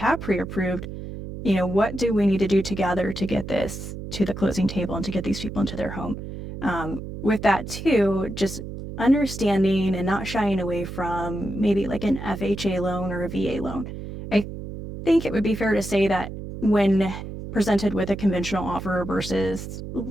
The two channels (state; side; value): noise; right; hum, 9 dB below the sound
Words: pre-approved? What do we need to do together to get this to the closing table and to get these people into their home? With that too, just understanding and not shying away from maybe like an FHA loan or a VA loan. I think it would be fair to say that when presented with a conventional offer versus